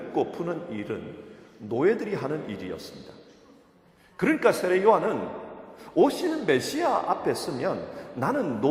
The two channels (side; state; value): both; identical; correlation 1.00